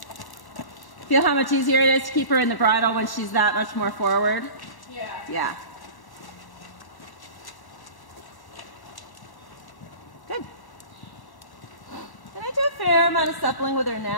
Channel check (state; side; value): late; right; 1.1 ms